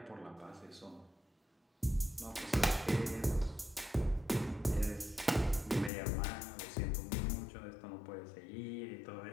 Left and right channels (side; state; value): right; drops out; at 5.9 s